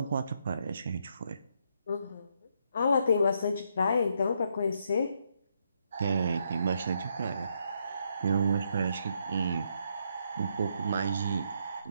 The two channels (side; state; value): both; inverted; correlation -0.76